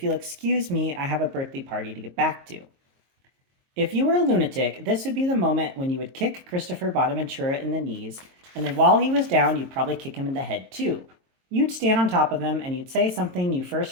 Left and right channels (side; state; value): left; late; 22 ms